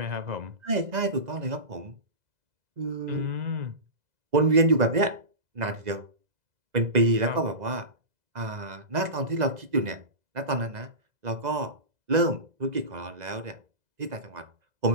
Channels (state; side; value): late; left; 2.0 ms